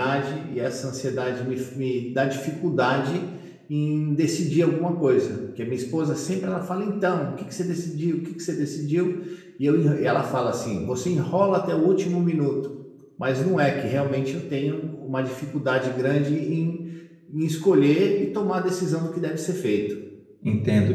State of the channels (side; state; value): both; identical; correlation 1.00